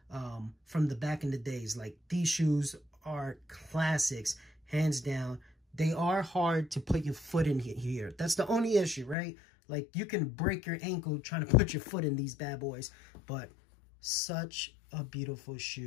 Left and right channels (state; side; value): drops out; right; at 9.2 s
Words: from the back in the days. Like, these shoes are classics, hands down. They are hard to put your foot in here. That's the only issue, right? Like, you can break your ankle trying to put your foot in these bad boys, but such a beautiful